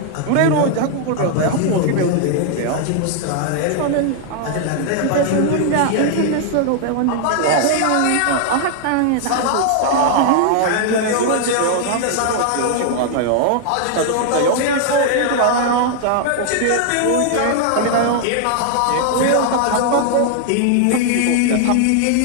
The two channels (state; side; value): different; both; correlation 0.00